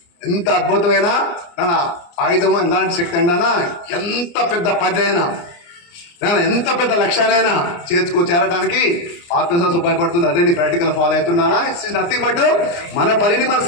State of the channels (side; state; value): right; late; 29 ms